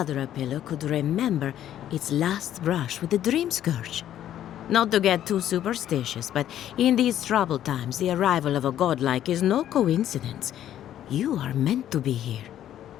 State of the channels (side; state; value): right; quieter; 11.5 dB